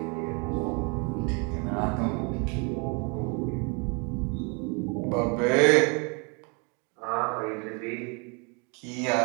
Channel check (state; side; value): quieter; left; 33.2 dB